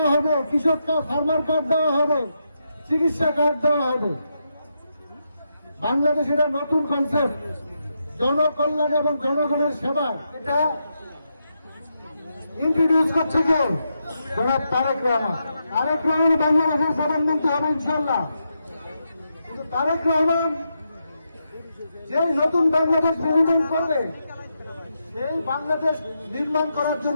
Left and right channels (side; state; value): both; inverted; correlation -0.84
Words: হবে, কৃষক ফার্মার কার্ড দেওয়া হবে, চিকিৎসা কার্ড দেওয়া হবে। বাংলাদেশ এটা নতুন কনসেপ্ট, জনকল্যাণ এবং জনগণের সেবা। এটা ইন্ট্রোডিউস করছে কে? জনাব তারেক রহমান। তারেক রহমান বাংলাদেশের প্রধানমন্ত্রী হবে ইনশাল্লাহ। কিন্তু তারেক রহমান যে নতুন বাংলাদেশ নির্মাণ করবে, সেই বাংলাদেশ নির্মাণ করার